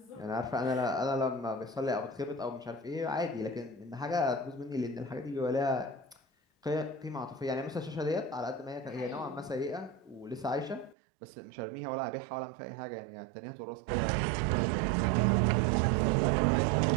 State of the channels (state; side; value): drops out; left; at 11.0 s